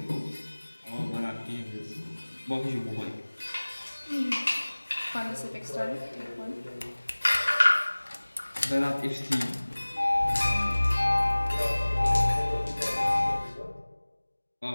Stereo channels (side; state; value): both; inverted; correlation -1.00